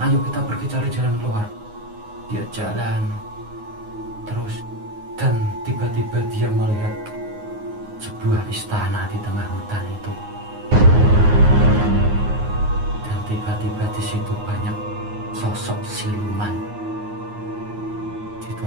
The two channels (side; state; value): left; late; 9.5 ms